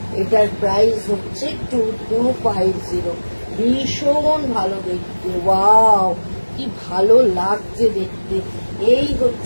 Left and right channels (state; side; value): inverted; both; correlation -1.00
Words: এটার প্রাইস হচ্ছে 2250, ভীষণ ভালো দেখতে। ওয়াও, কি ভালো লাগছে দেখতে। এই